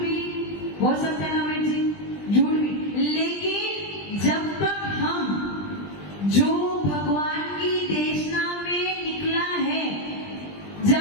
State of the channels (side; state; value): right; late; 20 ms